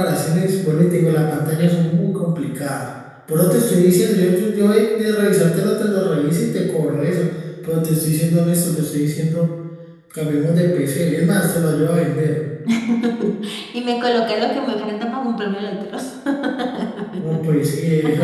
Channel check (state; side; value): identical; both; correlation 1.00